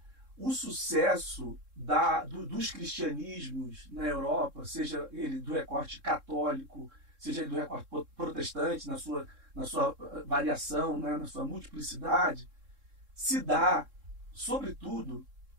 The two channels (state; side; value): late; left; 3.7 ms